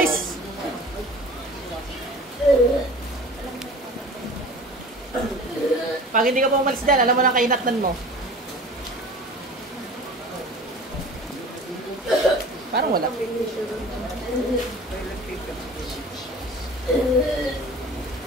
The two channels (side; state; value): both; normal; correlation 0.41